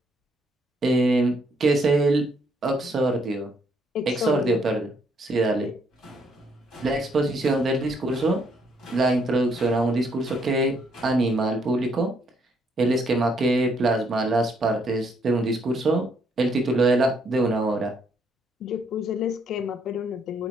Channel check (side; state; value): both; normal; correlation 0.71